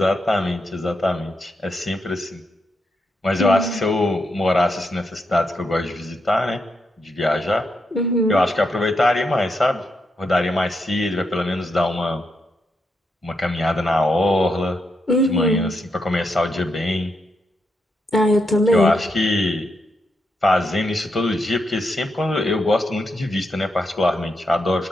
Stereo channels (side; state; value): both; normal; correlation 0.82